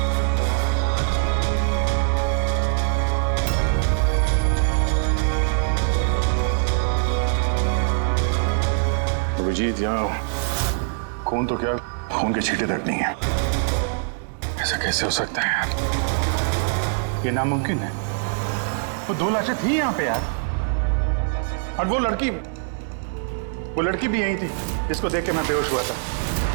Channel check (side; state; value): left; silent; digital silence